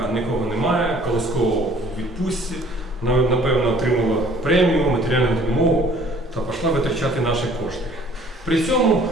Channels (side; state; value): both; normal; correlation 0.55